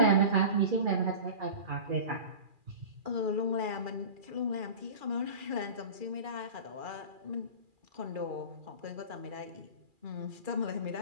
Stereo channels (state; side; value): late; left; 2.4 ms